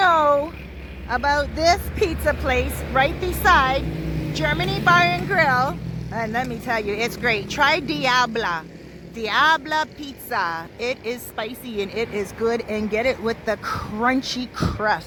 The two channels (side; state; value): both; identical; correlation 1.00